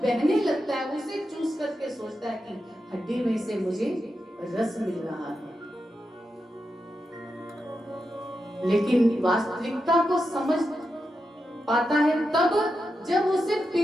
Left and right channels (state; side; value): normal; both; correlation 0.88